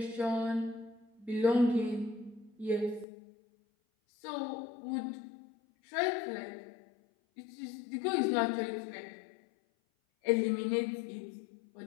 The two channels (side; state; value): right; drops out; at 3.1 s